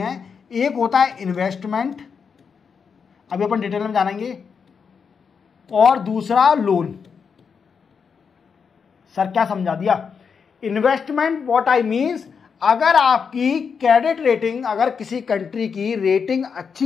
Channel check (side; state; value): right; quieter; 6.1 dB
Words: हैं। एक होता है इन्वेस्टमेंट, अभी अपन डिटेल में जानेंगे, और दूसरा लोन। सर क्या समझा दिया? इन्वेस्टमेंट व्हाट आई मीन्स, अगर आपकी क्रेडिट रेटिंग, अगर किसी कंट्री की रेटिंग